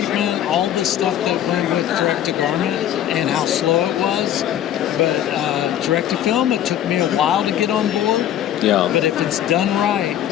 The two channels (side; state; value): right; quieter; 11.1 dB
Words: all the stuff that went with direct to garment and how slow it was. But direct to film, it took me a while to get on board. Yeah. But if it's done right,